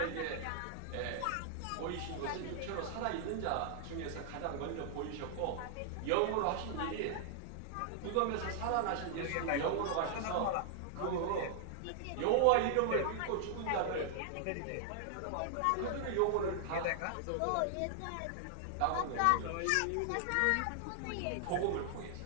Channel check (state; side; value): different; both; correlation -0.01